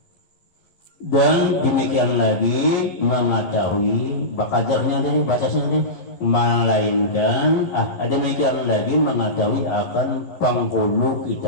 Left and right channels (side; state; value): right; late; 12 ms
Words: Dan demikian lagi mengetahui bakajarnya tadi, batasnya tadi, melainkan ada demikian lagi mengetahui akan penghulu